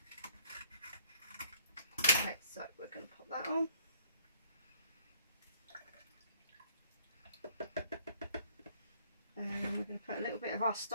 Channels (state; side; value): inverted; both; correlation -0.60